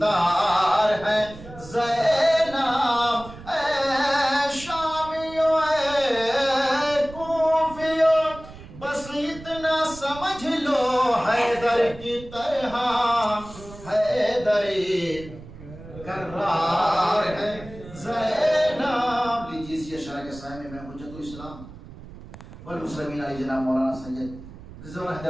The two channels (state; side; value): noise; right; rumble, 16 dB below the sound